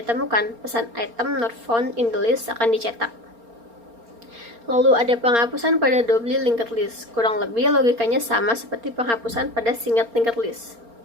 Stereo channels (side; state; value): left; late; 4.3 ms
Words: pesan item not found in the list akan dicetak. Lalu ada penghapusan pada double linked list. Kurang lebih logikanya sama seperti penghapusan pada single linked list.